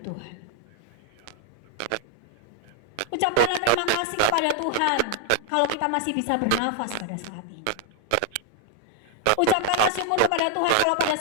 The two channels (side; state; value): both; different; correlation 0.00